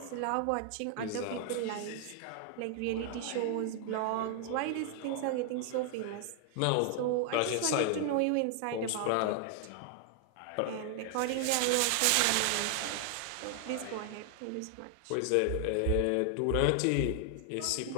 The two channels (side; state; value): both; different; correlation 0.00